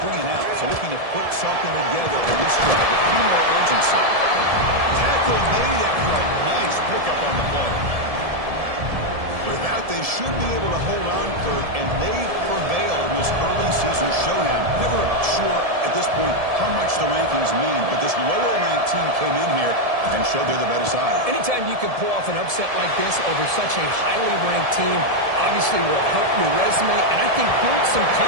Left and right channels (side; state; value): left; late; 1.7 ms